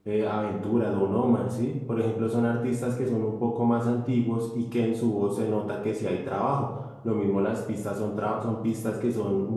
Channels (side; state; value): both; identical; correlation 1.00